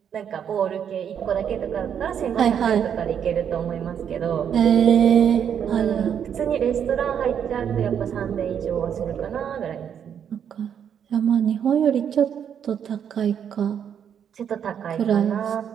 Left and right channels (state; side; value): quieter; left; 8.4 dB